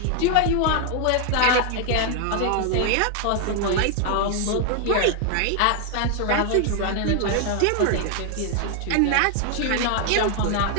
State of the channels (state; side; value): different; both; correlation 0.00